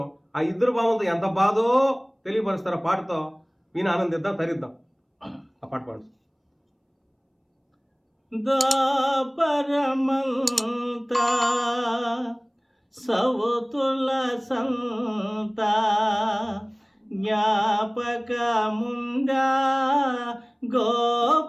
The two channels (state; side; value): identical; both; correlation 1.00